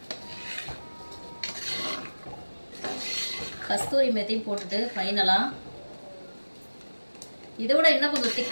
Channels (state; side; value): inverted; both; correlation -1.00